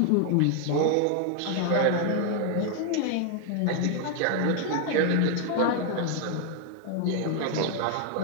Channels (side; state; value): both; different; correlation 0.01